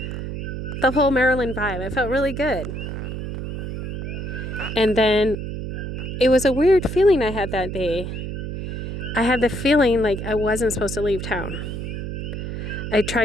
the whole Marilyn vibe. I felt really good. And then it was a weird feeling I had that day. I had the feeling like I wasn't supposed to leave town. I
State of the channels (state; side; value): noise; right; hum, 5 dB below the sound